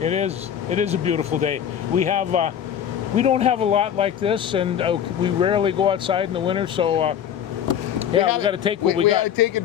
It is a beautiful day. We don't have a lot like this, and we rarely go outside in the winter. So we got to take what we got. We got to take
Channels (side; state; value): right; quieter; 9.2 dB